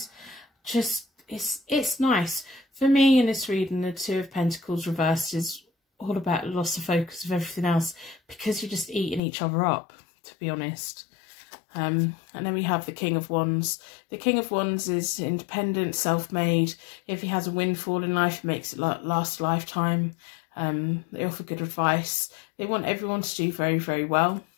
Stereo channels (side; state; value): right; drops out; at 9.2 s